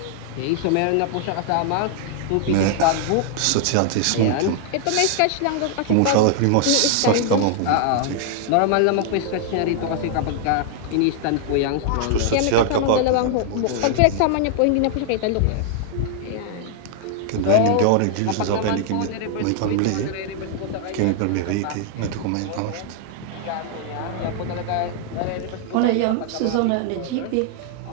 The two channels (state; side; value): different; both; correlation 0.00